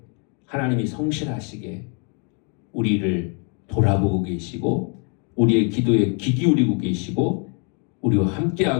하나님이 성실하시게 우리를 돌아보고 계시고 우리의 기도에 귀 기울이고 계시고 우리와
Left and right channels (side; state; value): right; quieter; 38.8 dB